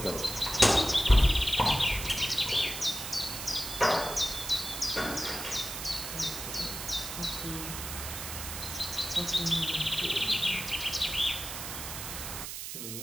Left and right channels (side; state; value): right; noise; hiss, 7 dB below the sound